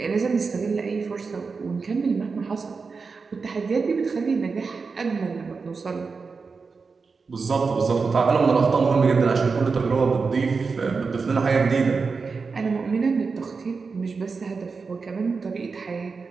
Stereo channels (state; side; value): quieter; left; 4.8 dB